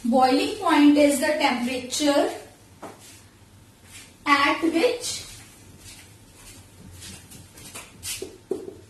Boiling point is the temperature at which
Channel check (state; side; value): identical; both; correlation 1.00